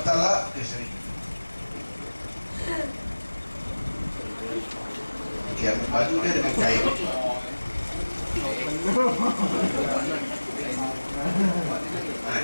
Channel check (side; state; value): both; inverted; correlation -1.00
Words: Taala, okey sini. Okey, ambil baju dia dengan kain.